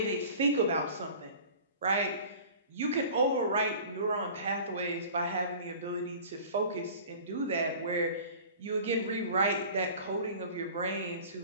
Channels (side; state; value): both; inverted; correlation -0.43